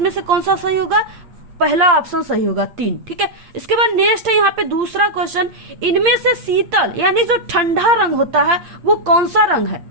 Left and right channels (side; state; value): left; late; 8.8 ms